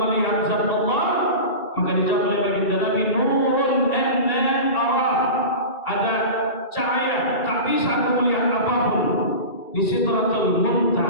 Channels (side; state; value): right; late; 2.3 ms